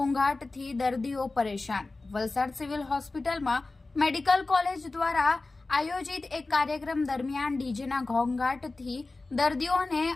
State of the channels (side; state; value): right; quieter; 3.4 dB